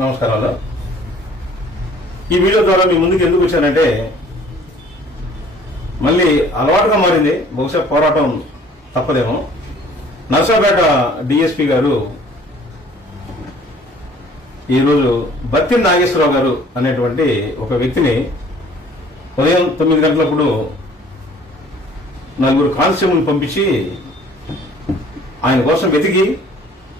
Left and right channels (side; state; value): both; normal; correlation 0.54